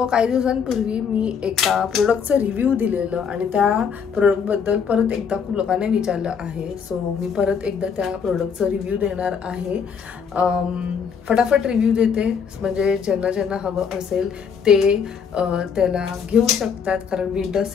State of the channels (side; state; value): right; quieter; 6.6 dB